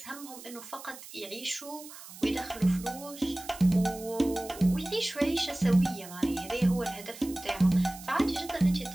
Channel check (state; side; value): noise; right; hiss, 16 dB below the sound